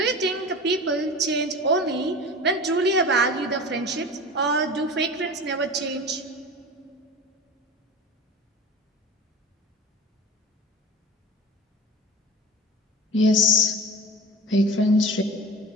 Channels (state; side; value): normal; both; correlation 0.34